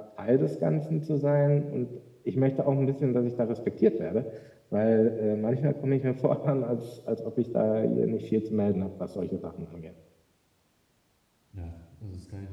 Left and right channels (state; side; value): identical; both; correlation 1.00